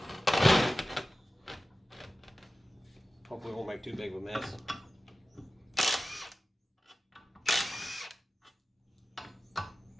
Hopefully it won't make too big of a mess.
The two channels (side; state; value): both; normal; correlation 0.95